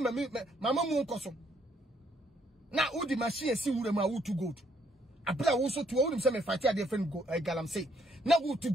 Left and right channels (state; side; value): normal; both; correlation 0.70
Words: mu nkoso. Na udi machine si wure ma wo to gold. Abra wo so to wo nim se me fight a different galam say. Na wo to